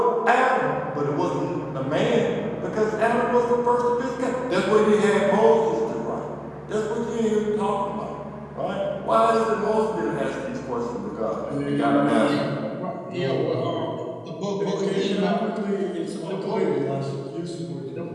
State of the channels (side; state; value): both; identical; correlation 1.00